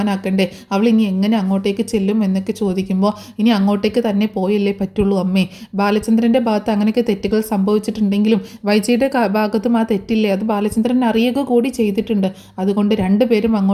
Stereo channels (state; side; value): identical; both; correlation 1.00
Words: അവൾ ഇനി എങ്ങനെ അങ്ങോട്ടേക്ക് ചെല്ലും എന്നൊക്കെ ചോദിക്കുമ്പോൾ, ഇനി അങ്ങോട്ടേക്ക് തന്നെ പോയല്ലേ പറ്റുള്ളൂ അമ്മേ, ബാലചന്ദ്രൻ്റെ ഭാഗത്ത് അങ്ങനെയൊക്കെ തെറ്റുകൾ സംഭവിച്ചിട്ടുണ്ടെങ്കിലും വൈജയുടെ ഭാഗത്തും ആ തെറ്റില്ലേ, അത് ബാലചന്ദ്രൻ അറിയുക കൂടി ചെയ്തിട്ടുണ്ട്, അതുകൊണ്ട് രണ്ടുപേരും